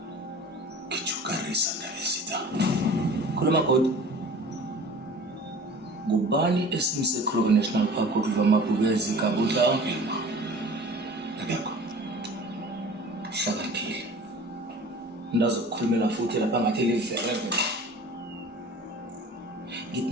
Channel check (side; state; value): both; normal; correlation 0.43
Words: Kichukarisa ndabezitha. Khuluma God. Ngubani esimse Kruger National Park ukuva amabhubezi kabudla ongema? Akekho. Hlakaniphile. Ndazokukhulumela futhi lapha ngathi livereve.